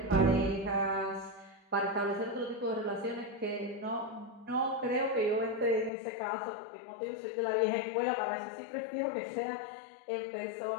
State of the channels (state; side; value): drops out; right; at 5.9 s